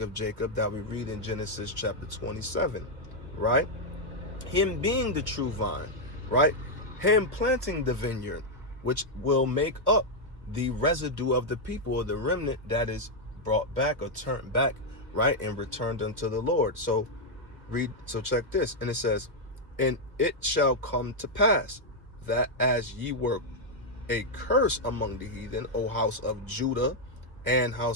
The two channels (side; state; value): left; late; 1.3 ms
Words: of Jacob that we read in Genesis chapter 27, right? Him being the true vine, right? Him planting the vineyard, which will make up the residue of the people, or the remnant that is brought back or turned back, right? And returned unto the Lord. So check this. And it says, and it shall come to pass that as ye were a curse among the heathen, O house of Judah and